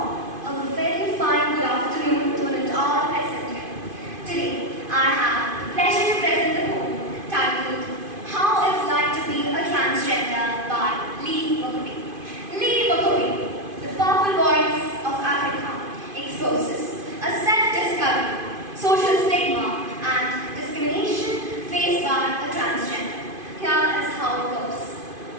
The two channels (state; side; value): late; left; 2.5 ms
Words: a very fine good afternoon to an all present here. Today, I have the pleasure to present the poem titled How It's Like to Be a Transgender by 𝗞𝗘𝗥𝗔𝗟𝗔. 𝗞𝗘𝗥𝗔𝗟𝗔, the powerful voice of Africa, exposes a self-discovery, social stigma, and discrimination faced by a transgender. Here is how it goes.